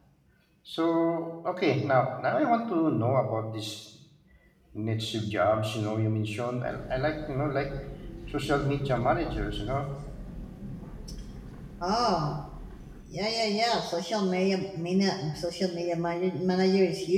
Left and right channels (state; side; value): identical; both; correlation 1.00